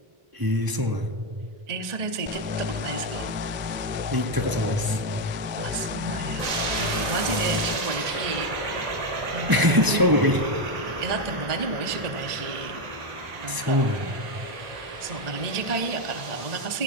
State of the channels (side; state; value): left; late; 1.0 ms